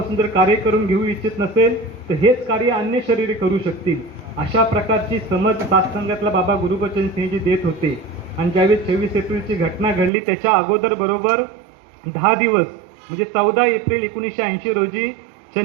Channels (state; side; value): drops out; left; at 10.1 s